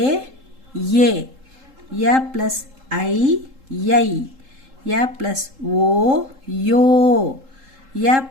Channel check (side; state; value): left; late; 3.7 ms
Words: या प्लस आई यै, या प्लस ओ यो, या